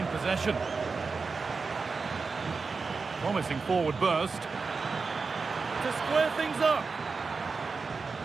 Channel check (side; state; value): left; quieter; 4.6 dB